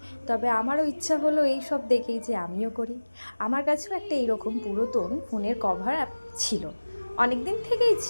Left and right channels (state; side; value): inverted; both; correlation -1.00